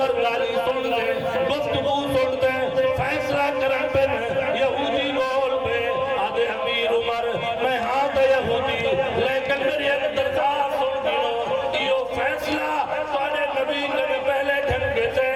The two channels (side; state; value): right; noise; hum, 25 dB below the sound